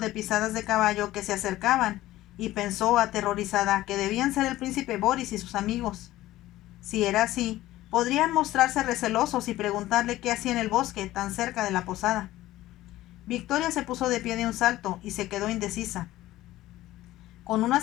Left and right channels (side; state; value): right; quieter; 15.8 dB